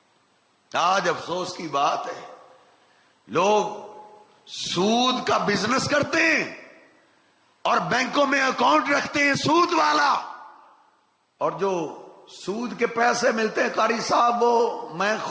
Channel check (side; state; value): both; identical; correlation 1.00